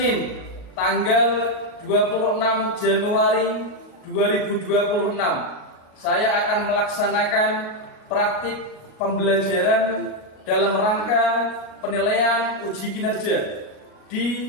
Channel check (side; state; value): right; late; 38 ms